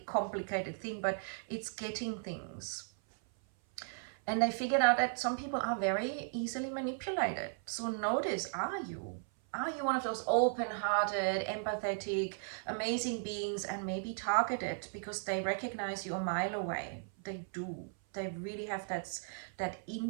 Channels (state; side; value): silent; left; 54 dB below the other